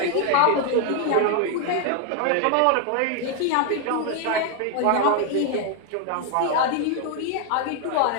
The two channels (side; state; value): both; different; correlation 0.00